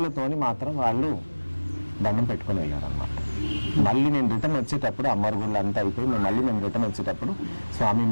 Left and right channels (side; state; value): both; inverted; correlation -1.00